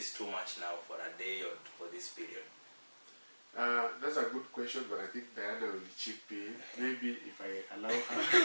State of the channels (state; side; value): inverted; both; correlation -1.00